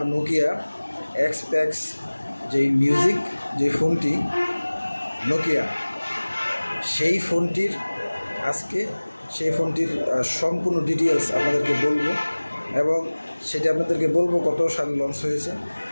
নোকিয়া এক্সপ্যাক্স যেই মিউজিক যে ফোনটি নোকিয়া, সেই ফোনটির সম্পূর্ণ ডিটেলস আপনাদেরকে বলবো এবং সেটা আপনাদেরকে বলবো কত সালে লঞ্চ হয়েছে।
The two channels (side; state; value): both; inverted; correlation -1.00